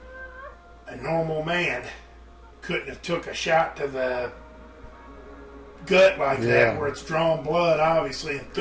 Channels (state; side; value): identical; both; correlation 1.00